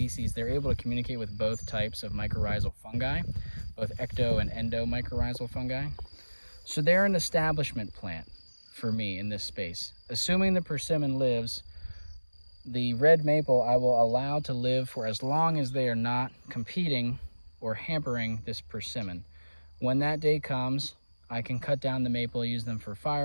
they're able to communicate with both types of mycorrhizal fungi, both ecto and endo mycorrhizal fungi. So they're an establishment plant for me in this space. Assuming the persimmon lives, the red maple I will allow to live for as long as they are not competing or hampering this persimmon. When that day comes, I can cut down the maple, use them for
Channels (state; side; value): inverted; both; correlation -1.00